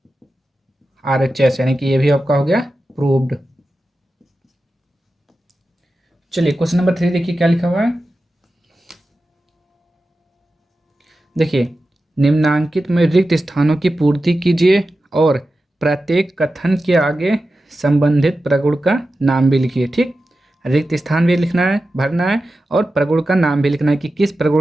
RHS, यानी कि ये भी आपका हो गया प्रूव्ड। चलिए क्वेश्चन नंबर 3 देखिए क्या लिखा हुआ है। देखिए निम्नांकित में रिक्त स्थानों की पूर्ति कीजिए और प्रत्येक कथन के आगे संबंधित प्रगुण का नाम भी लिखिए। ठीक, रिक्त स्थान भी लिखना है, भरना है, और प्रगुण का नाम भी लिखना है कि किस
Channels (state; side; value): normal; both; correlation 0.93